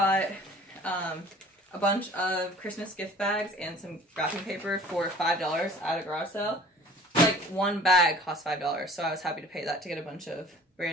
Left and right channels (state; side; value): normal; both; correlation 0.48